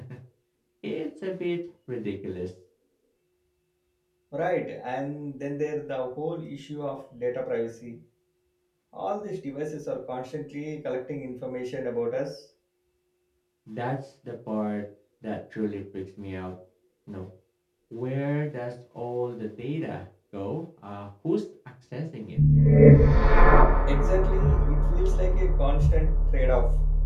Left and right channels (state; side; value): identical; both; correlation 1.00